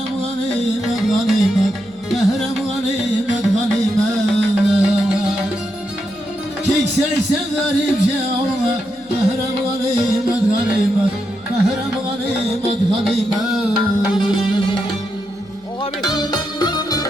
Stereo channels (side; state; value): left; noise; hum, 28 dB below the sound